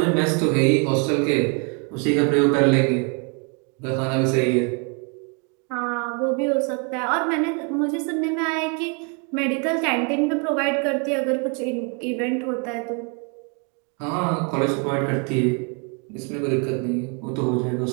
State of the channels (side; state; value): left; quieter; 36.4 dB